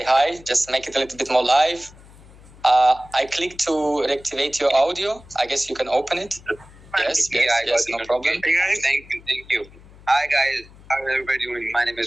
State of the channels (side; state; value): left; noise; hum, 23 dB below the sound